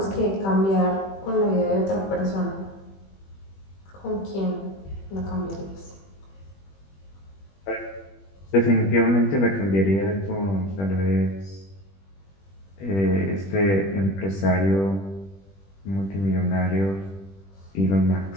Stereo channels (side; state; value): right; late; 21 ms